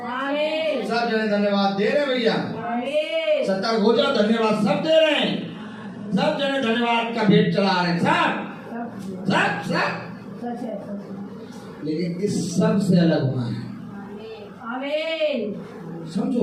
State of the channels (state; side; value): identical; both; correlation 1.00